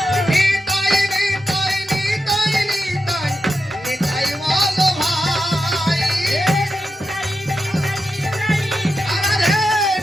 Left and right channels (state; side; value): normal; both; correlation 0.88